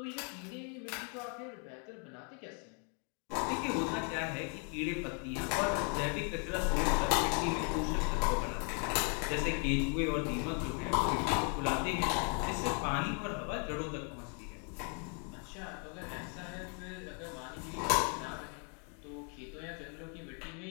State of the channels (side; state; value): right; quieter; 39.2 dB